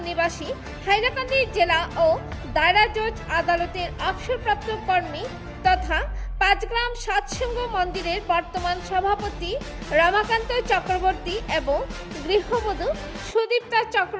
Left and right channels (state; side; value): identical; both; correlation 1.00